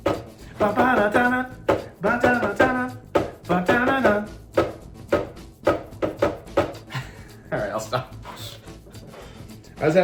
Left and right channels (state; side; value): identical; both; correlation 1.00